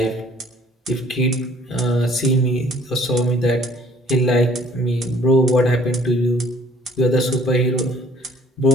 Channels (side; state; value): both; normal; correlation 0.57